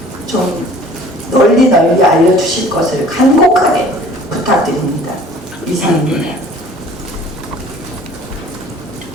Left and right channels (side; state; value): both; normal; correlation 0.50